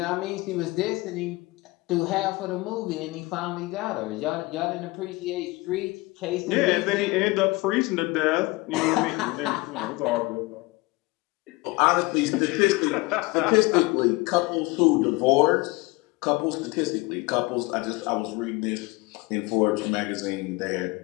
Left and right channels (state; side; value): quieter; right; 23.0 dB